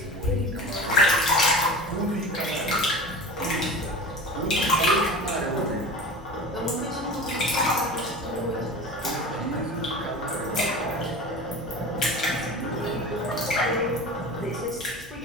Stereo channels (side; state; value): both; normal; correlation 0.33